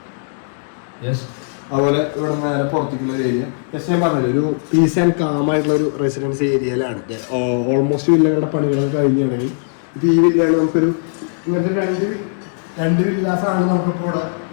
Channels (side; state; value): right; silent; digital silence